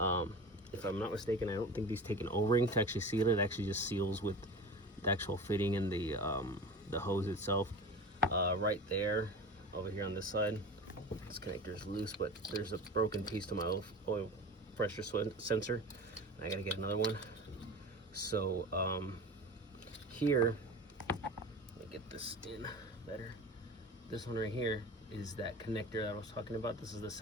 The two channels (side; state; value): both; normal; correlation 0.34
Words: I'm not mistaken, I don't think these take an O-ring to actually seal it. It actually just seals with the actual fitting and the hose itself. Right there, over here on this side, this connector is loose, but there's a broken piece to my oil pressure sensor. I gotta get another one. So here, let me get this in better. This one right here is that connector that I was talking about. This is the